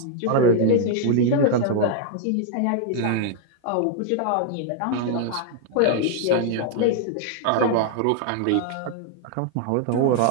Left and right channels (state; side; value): different; both; correlation 0.00